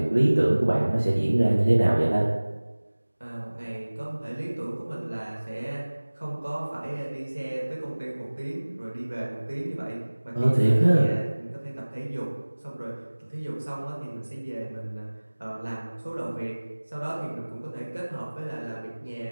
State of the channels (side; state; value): both; inverted; correlation -1.00